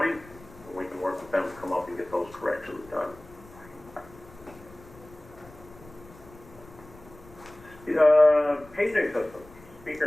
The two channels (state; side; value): noise; left; rumble, 22 dB below the sound